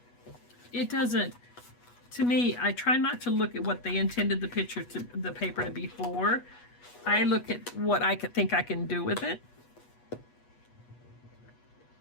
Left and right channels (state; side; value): late; right; 8.2 ms